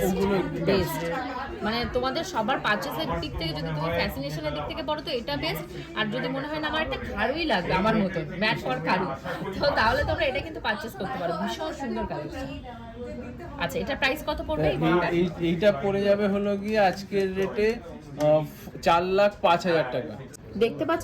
মানে তোমাদের সবার পারচেসের দিক থেকে, যদি তুমি ফ্যাসিনেশনের দিক থেকে পড়ো তো এটা বেস্ট। আর যদি মনে হয় না আমার একটা খাড়ুই লাগবে আমার মতো ম্যাট ফর খাড়ু, তো তাহলে তোমরা এটা কিন্তু পারচেস করতে পারো। ভীষণ ভীষণ সুন্দর কালেকশন। আচ্ছা, এটা প্রাইস কত পড়বে এই ঘড়িটার? এইটা পড়ে যাবে হলো গিয়ে আজকের রেটে 4,05,000 টাকা। দেখতে পাচ্ছ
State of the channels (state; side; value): identical; both; correlation 1.00